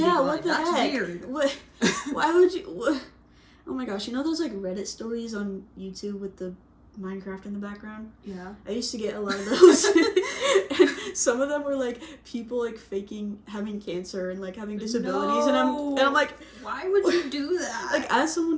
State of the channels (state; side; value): identical; both; correlation 1.00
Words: What the That's heck? weird. What? Why would you... What? Oh my gosh, you know those, like, Reddit stories on YouTube with the Minecraft in the background? Yeah. I used to get a lot of those. And some of them were, like, people, like, faking having cancer and, like, having disabilities. No. And I'm like... Why would you do that? Like, as someone